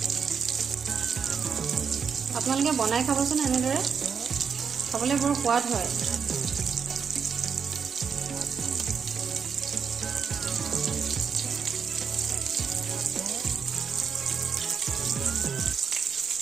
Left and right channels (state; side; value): quieter; left; 6.5 dB